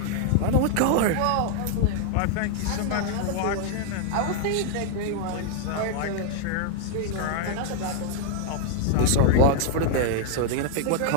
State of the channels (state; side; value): different; both; correlation 0.00